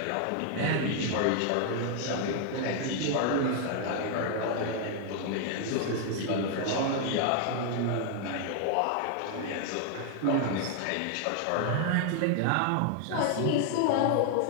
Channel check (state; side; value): different; both; correlation 0.00